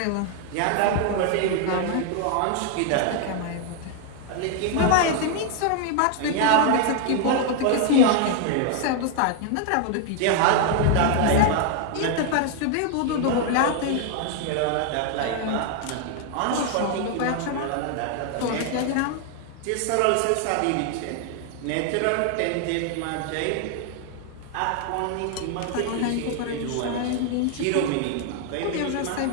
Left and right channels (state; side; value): different; both; correlation 0.00